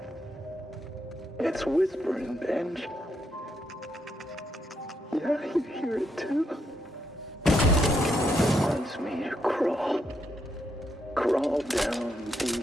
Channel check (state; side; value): normal; both; correlation 0.78